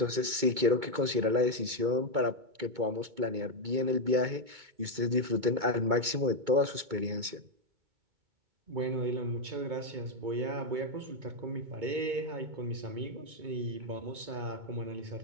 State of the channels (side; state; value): left; late; 2.2 ms